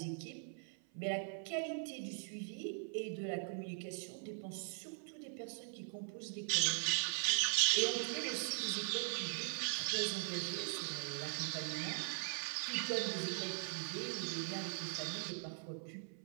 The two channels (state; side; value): silent; left; 50 dB below the other